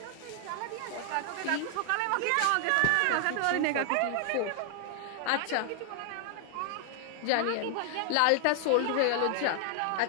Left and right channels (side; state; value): both; different; correlation 0.00